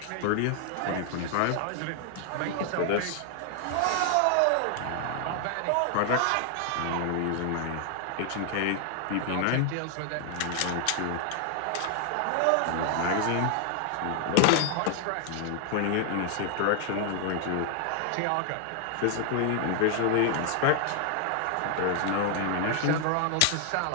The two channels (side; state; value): both; different; correlation 0.00